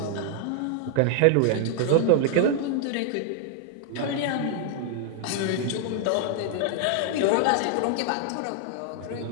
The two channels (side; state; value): both; different; correlation 0.00